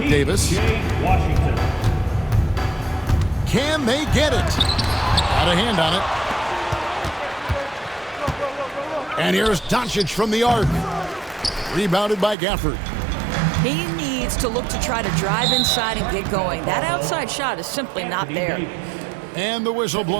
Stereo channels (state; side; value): drops out; left; at 12.4 s